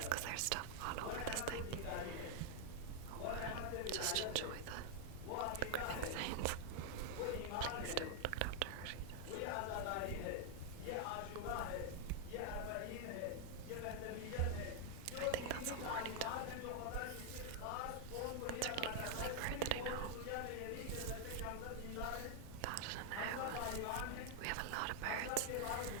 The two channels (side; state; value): both; different; correlation 0.00